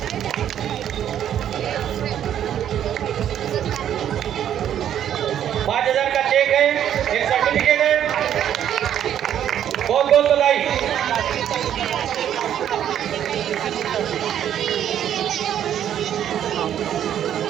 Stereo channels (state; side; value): quieter; left; 10.2 dB